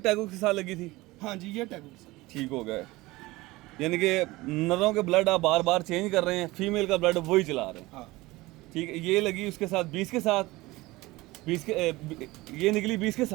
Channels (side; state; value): left; quieter; 20.2 dB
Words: के साथ लगी थी? हाँ जी, ये टैगो ठीक हो गया, यानी कि नरों के ब्लड आप बार बार चेंज कर रहे हैं, फीमेल का ब्लड वही चला रहे हैं, हाँ ठीक है। ये लगी उसके साथ 20 के साथ, 20 के ये निकली 20 के